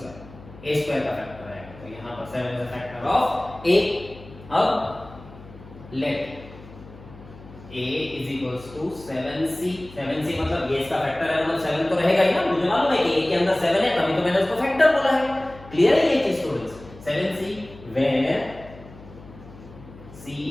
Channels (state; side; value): noise; left; hum, 19 dB below the sound